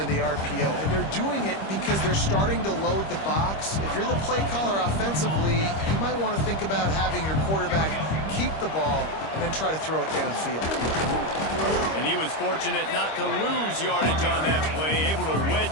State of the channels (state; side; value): late; right; 25 ms